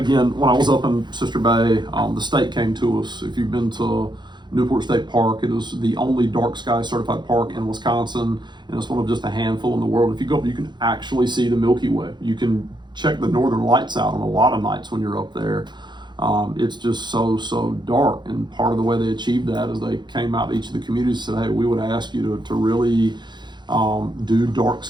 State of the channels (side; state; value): left; late; 0.21 ms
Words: when I was up in Sister Bay, the state came to us. If you've been to Newport State Park, it is the only dark sky certified park in Wisconsin, and it's one of just a handful in the world. If you go up, you can actually see the Milky Way. You can check the northern lights out on a lot of nights when you're up there. It's just so dark, and part of the way they achieved that is they came out to each of the communities and said, hey, we would ask you to really do dark